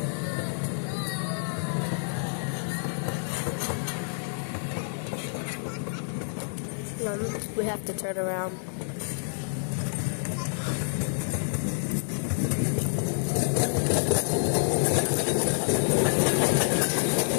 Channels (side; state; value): right; silent; digital silence